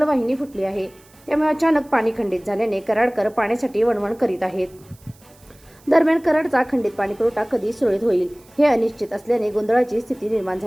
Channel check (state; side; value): noise; right; hiss, 28 dB below the sound